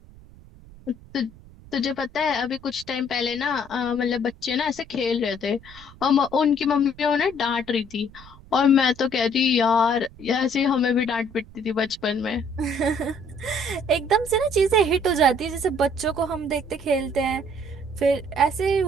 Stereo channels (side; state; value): right; noise; rumble, 21 dB below the sound